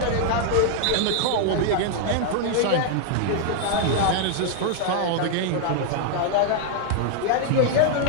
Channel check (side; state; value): both; different; correlation 0.00